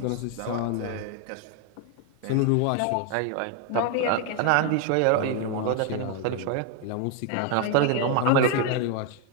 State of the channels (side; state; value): both; different; correlation 0.01